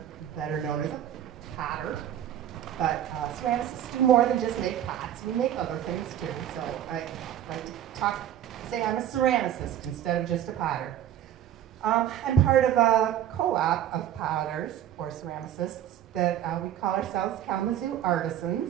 better known as a potter. But ceramicists do more than just make pots. We make other things too. So I like to say I'm a ceramicist instead of just a potter. I'm part of a co-op of potters, or ceramicists, that we call ourselves Kalamazoo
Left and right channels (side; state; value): left; quieter; 11.0 dB